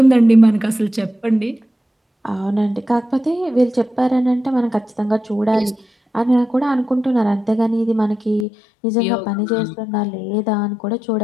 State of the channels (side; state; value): right; drops out; at 8.5 s